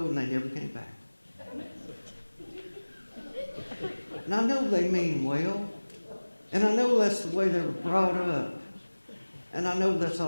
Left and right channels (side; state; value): both; inverted; correlation -1.00